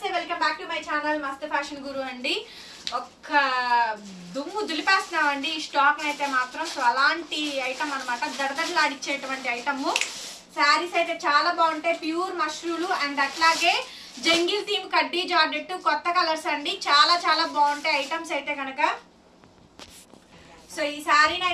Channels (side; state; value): both; identical; correlation 1.00